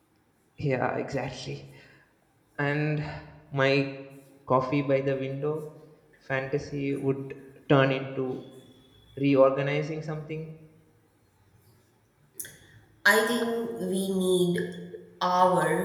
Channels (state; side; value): identical; both; correlation 1.00